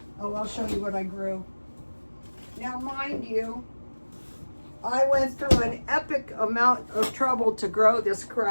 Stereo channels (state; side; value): inverted; both; correlation -1.00